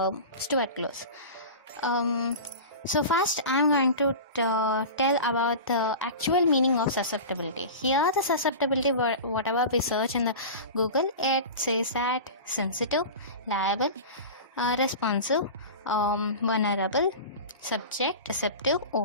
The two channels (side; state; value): both; inverted; correlation -0.31